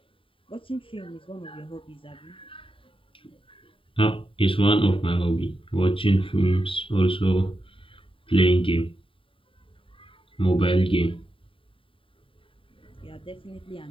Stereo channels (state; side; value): late; right; 0.25 ms